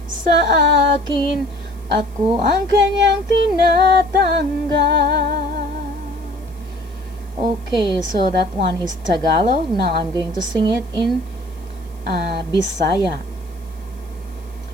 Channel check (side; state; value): right; noise; hiss, 28 dB below the sound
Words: sa akin, ako ang kanyang tinatanggap. Okay, so that one is Tagalog. Now I'm going to sing it in Bisaya.